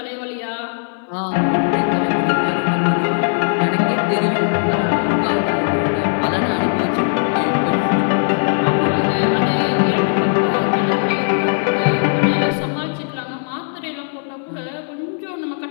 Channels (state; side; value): silent; right; 64 dB below the other